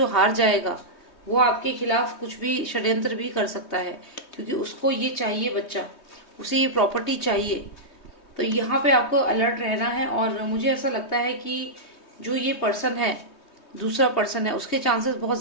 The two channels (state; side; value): late; right; 3.2 ms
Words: हार जाएगा वो आपके खिलाफ कुछ भी षड्यंत्र भी कर सकता है, क्योंकि उसको ये चाहिए बच्चा, उसे ये प्रॉपर्टी चाहिए। तो यहाँ पे आपको अलर्ट रहना है। और मुझे ऐसा लगता है कि जो ये पर्सन है, दूसरा पर्सन है, उसके चांसेस बहुत